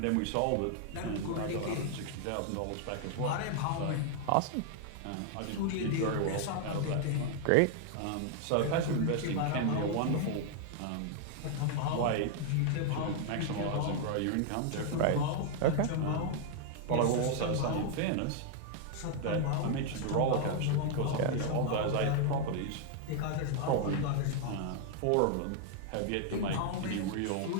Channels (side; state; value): both; different; correlation 0.00